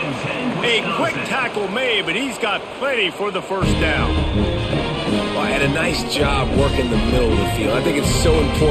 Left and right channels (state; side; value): identical; both; correlation 1.00